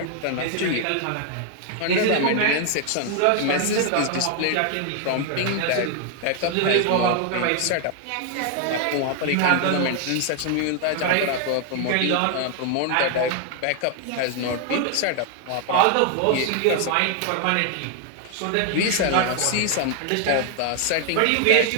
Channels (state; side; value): different; both; correlation 0.00